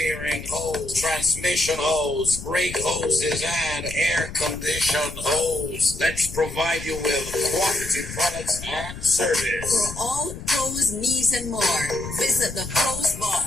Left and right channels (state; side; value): noise; left; rumble, 11 dB below the sound